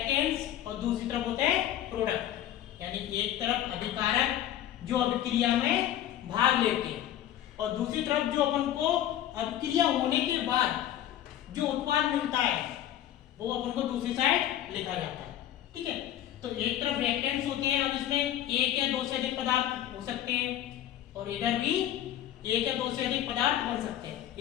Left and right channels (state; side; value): quieter; right; 11.9 dB